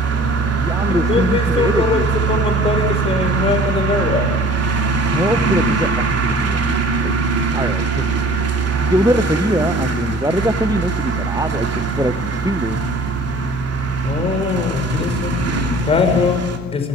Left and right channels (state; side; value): normal; both; correlation 0.48